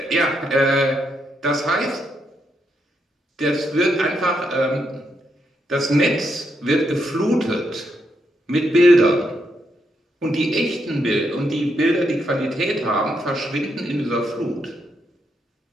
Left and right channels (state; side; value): normal; both; correlation 0.79